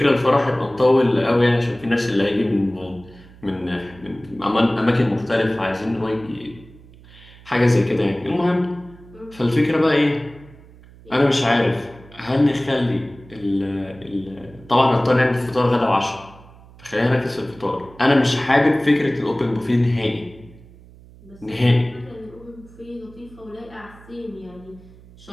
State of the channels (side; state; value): right; noise; hum, 22 dB below the sound